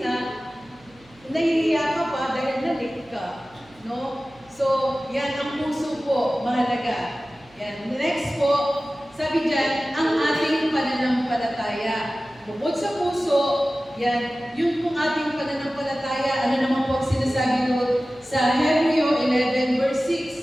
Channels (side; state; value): right; noise; hum, 28 dB below the sound